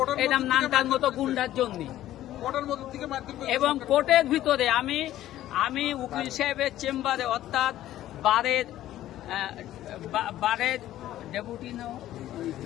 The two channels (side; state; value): right; quieter; 13.5 dB